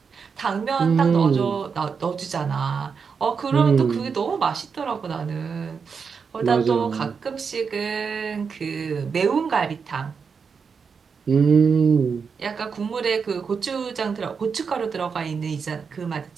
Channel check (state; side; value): quieter; left; 5.8 dB